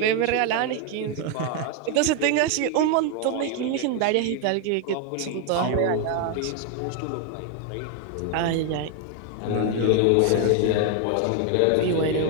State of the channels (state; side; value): different; both; correlation 0.01